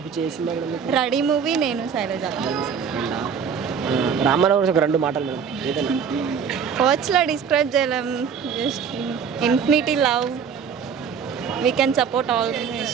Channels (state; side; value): quieter; left; 6.9 dB